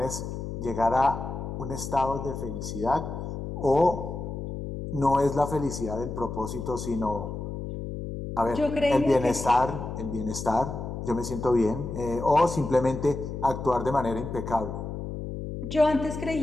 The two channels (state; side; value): noise; left; hum, 6 dB below the sound